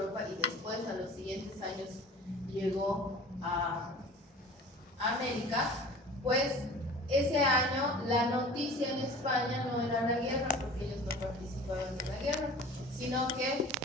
y después a los siguientes años llegó a América, pues ese año la noticia en España no era la guerra, porque ellos no participaban en la guerra, sino que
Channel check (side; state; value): both; normal; correlation 0.42